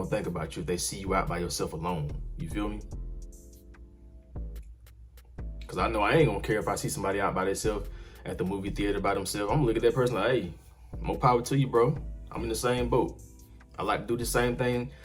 think about you if they see you out by yourself alone. You feel me? Cause I know I ain't gonna care if I see somebody out by themselves at the movie theater by themselves. I'm gonna look at that person like, hey, more power to you, bro. I'm in the same boat. I like to do the same thing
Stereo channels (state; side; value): identical; both; correlation 1.00